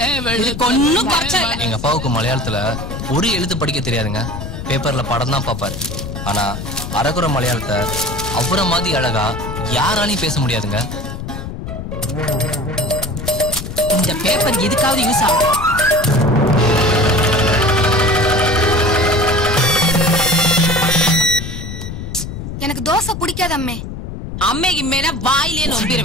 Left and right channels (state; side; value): noise; left; rumble, 7 dB below the sound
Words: ஒன்னும் குறைச்சல. எங்க அப்பாவுக்கு மலையாளத்துல ஒரு எழுத்து படிக்க தெரியாதுங்க. பேப்பர்ல படம் தான் பாப்பாரு. ஆனா அரகுற மலையாளத்தை அவரை மாதிரி அழகா யாராலையும் பேச முடியாதுங்க. இந்த பேப்பர் எதுக்காவது யூஸ் ஆகும். எனக்கு தோசை பிடிக்காது அம்மே. அம்மே கிம்மேனா வாயிலே